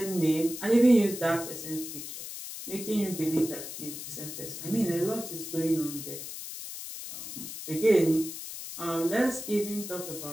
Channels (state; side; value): noise; left; hiss, 9 dB below the sound